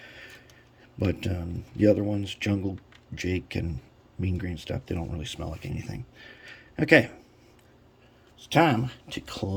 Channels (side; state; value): both; identical; correlation 1.00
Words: But the other ones, Jungle Jake and mean green stuff, they don't really smell like anything. Okay, it's time to